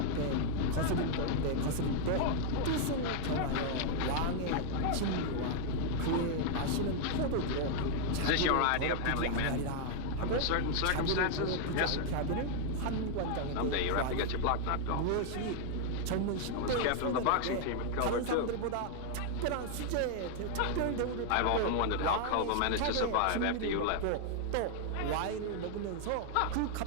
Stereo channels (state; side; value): different; both; correlation 0.00